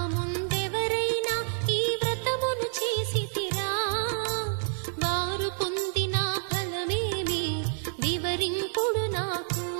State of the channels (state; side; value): silent; left; 59 dB below the other